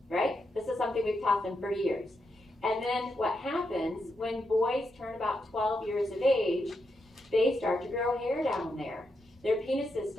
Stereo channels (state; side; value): normal; both; correlation 0.84